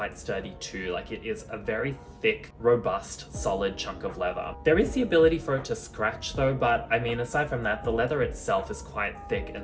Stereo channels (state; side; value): identical; both; correlation 1.00